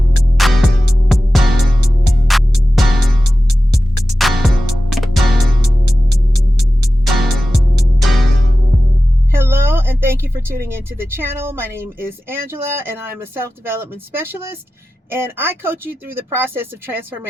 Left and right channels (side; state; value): both; normal; correlation 0.94